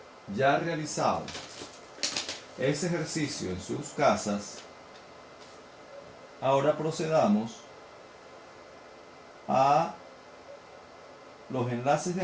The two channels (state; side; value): identical; both; correlation 1.00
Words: ya realizado ese ejercicio en sus casas, ahora procedamos a los enlaces de